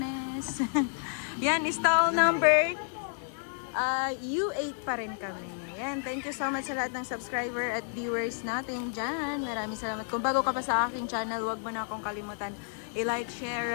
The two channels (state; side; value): silent; right; digital silence